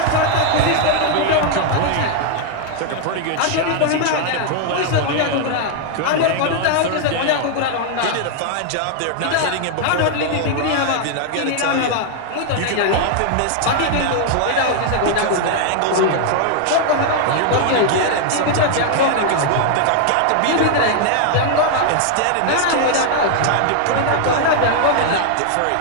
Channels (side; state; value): both; different; correlation 0.00